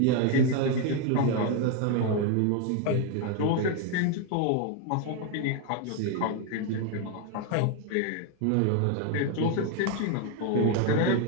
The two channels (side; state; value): both; different; correlation 0.01